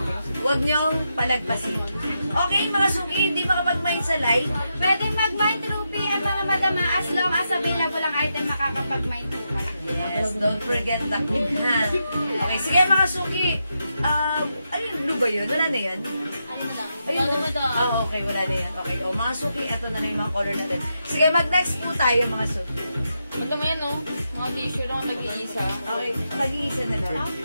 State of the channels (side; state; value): both; inverted; correlation -0.85